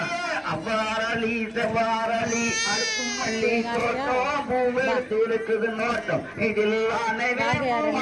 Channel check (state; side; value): identical; both; correlation 1.00